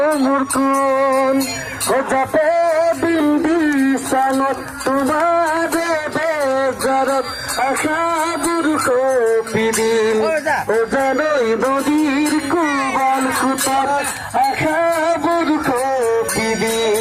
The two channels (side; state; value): both; identical; correlation 1.00